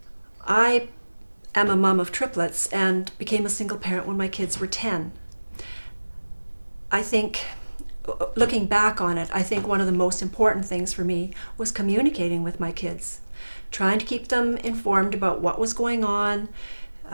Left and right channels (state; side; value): inverted; both; correlation -1.00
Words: I am a mom of triplets and became a single parent when my kids were 10. I think, looking back on it, I think one of the most important things for me was communicating with my kids, trying to keep them informed about what was going on.